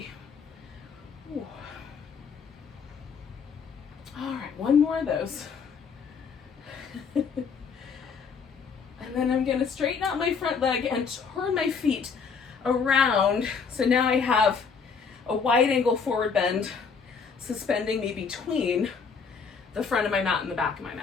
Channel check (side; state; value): right; quieter; 5.6 dB